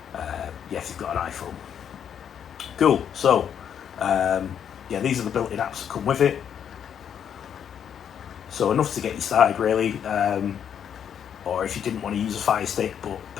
yeah, if you've got an iPhone. Cool. So yeah, these are the built-in apps that come with it. So enough to get you started really. Or if you didn't want to use a Fire Stick, but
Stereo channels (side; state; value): right; quieter; 8.5 dB